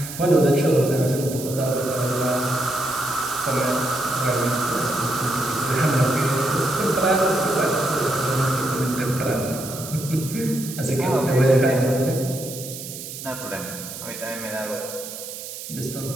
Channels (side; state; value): right; noise; hiss, 10 dB below the sound